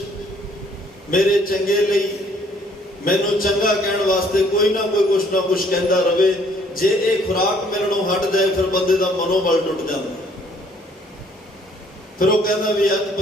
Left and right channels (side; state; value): both; normal; correlation 0.62